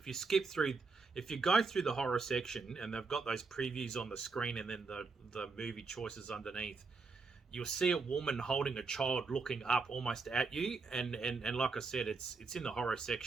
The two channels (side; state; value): left; quieter; 4.3 dB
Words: you go through the horror section, and they've got those previews on the screen and then the movie choices underneath, you'll see a woman holding a child looking up almost at you. And like I said, it's in the horror